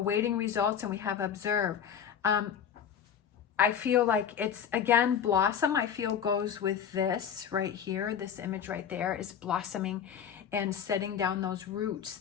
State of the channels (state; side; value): quieter; right; 8.4 dB